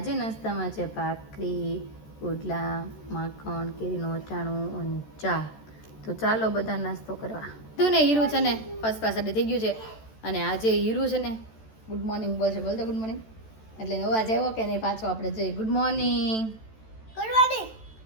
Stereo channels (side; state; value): right; late; 14 ms